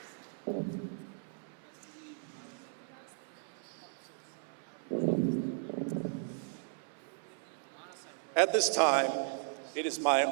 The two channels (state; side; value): silent; left; 54 dB below the other